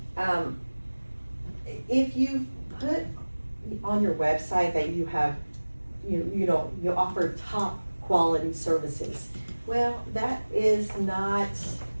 put on your website that you have, you offer top quality services, well, that's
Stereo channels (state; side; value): inverted; both; correlation -1.00